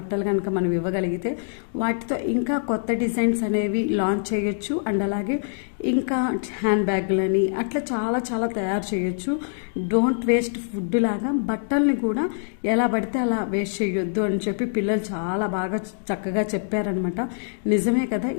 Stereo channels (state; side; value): silent; right; digital silence